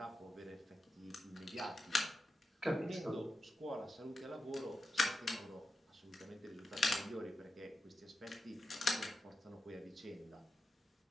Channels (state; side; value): normal; both; correlation 0.90